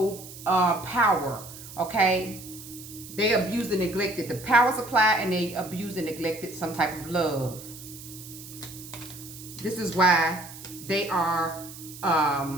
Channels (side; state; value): right; noise; hiss, 15 dB below the sound